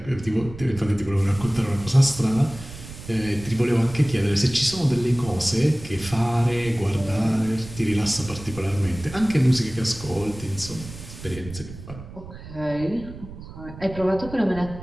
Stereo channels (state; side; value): noise; right; rumble, 14 dB below the sound